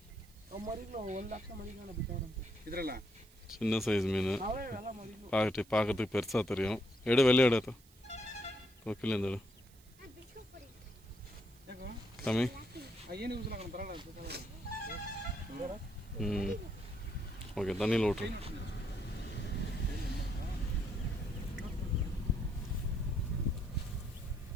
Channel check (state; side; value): noise; right; hiss, 26 dB below the sound